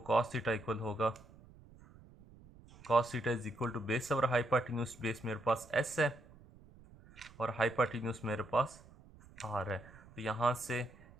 कॉस थीटा इक्वल होगा cos theta is equal to base और हाइपोटेन्यूज, बेस मेरे पास एस है और हाइपोटेन्यूज मेरे पास आर है। तो यहाँ से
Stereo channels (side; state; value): right; noise; rumble, 22 dB below the sound